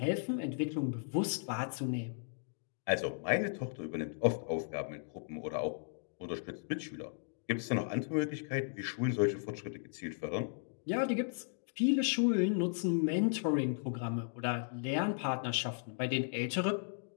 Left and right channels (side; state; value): right; silent; digital silence